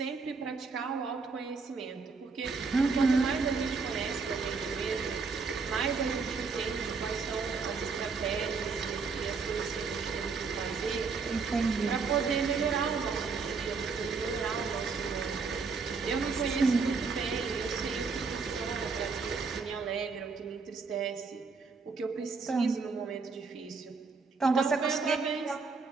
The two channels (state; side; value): quieter; left; 4.7 dB